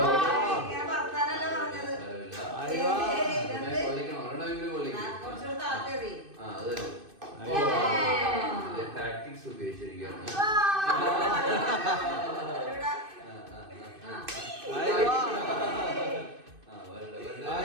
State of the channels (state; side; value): late; left; 2.6 ms